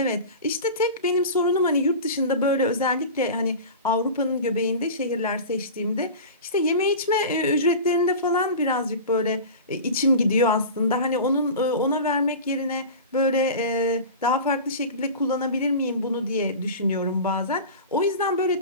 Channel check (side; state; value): both; inverted; correlation -0.32